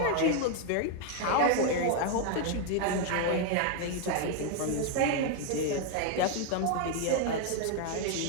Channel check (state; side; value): different; both; correlation 0.00